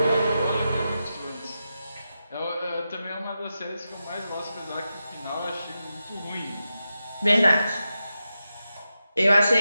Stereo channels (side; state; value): both; inverted; correlation -0.90